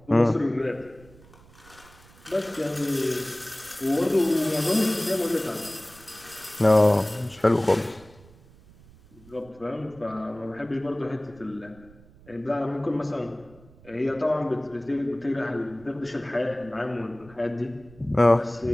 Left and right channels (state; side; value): noise; right; rumble, 24 dB below the sound